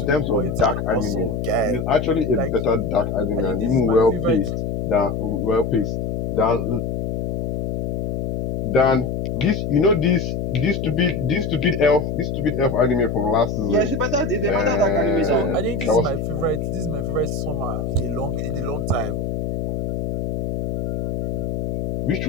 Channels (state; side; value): noise; left; hum, 2 dB below the sound